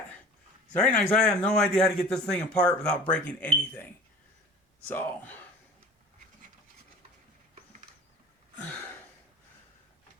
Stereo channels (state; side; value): normal; both; correlation 0.42